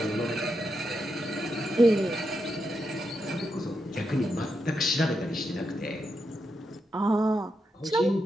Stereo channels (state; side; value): normal; both; correlation 0.84